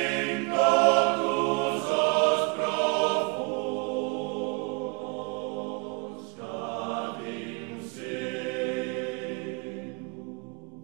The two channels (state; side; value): quieter; left; 32.4 dB